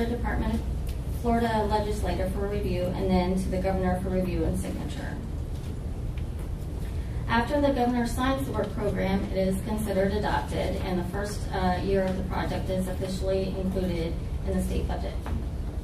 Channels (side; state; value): both; identical; correlation 1.00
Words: legislator for review and then to the governor for review and signature. After the governor signs the work program, it is considered adopted and the first year of the project is officially included in the state budget.